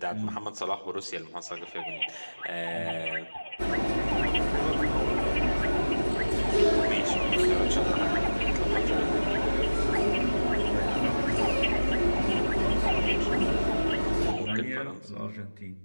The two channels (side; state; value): both; inverted; correlation -1.00